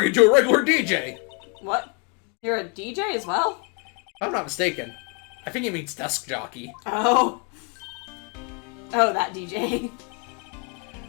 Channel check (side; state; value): right; quieter; 34.9 dB